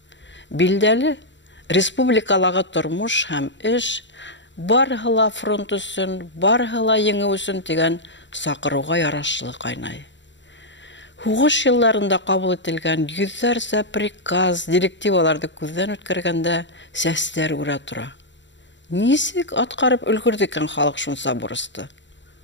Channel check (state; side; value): late; right; 0.53 ms